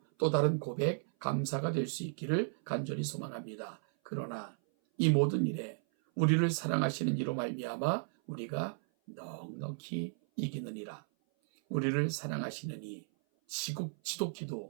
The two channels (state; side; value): silent; left; 55 dB below the other